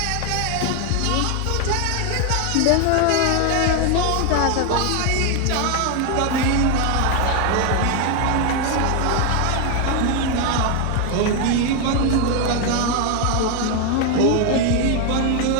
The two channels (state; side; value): different; both; correlation 0.01